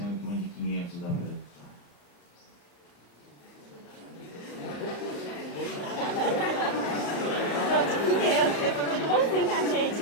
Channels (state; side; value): late; right; 35 ms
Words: que uma de 500 dá para usar. Bonzinho com a